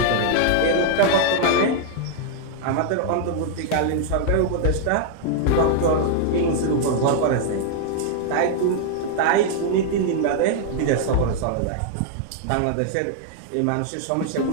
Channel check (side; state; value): both; different; correlation -0.01